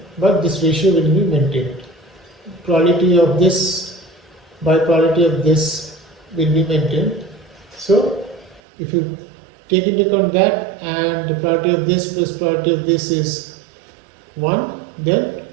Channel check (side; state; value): left; drops out; at 8.6 s